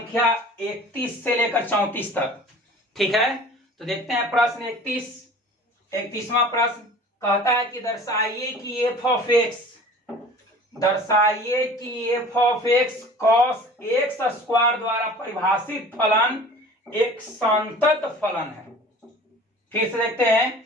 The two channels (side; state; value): both; normal; correlation 0.44